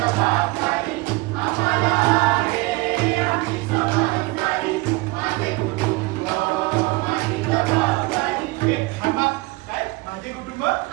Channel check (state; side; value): quieter; left; 22.6 dB